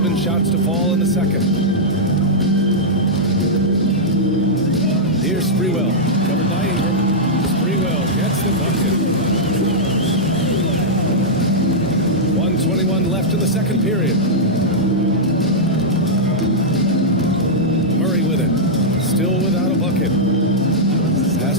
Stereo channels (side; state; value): both; normal; correlation -0.08